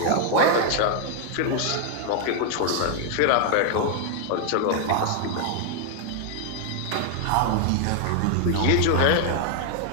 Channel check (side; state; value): both; different; correlation 0.00